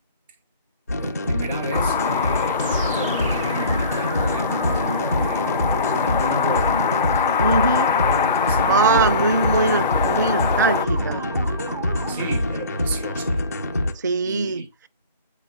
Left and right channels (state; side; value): inverted; both; correlation -0.42